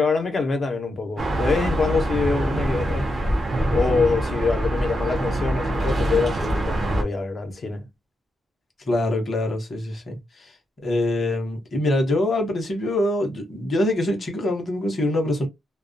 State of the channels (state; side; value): normal; both; correlation 0.84